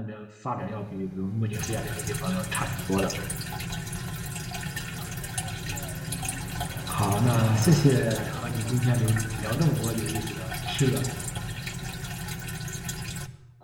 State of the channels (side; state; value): both; identical; correlation 1.00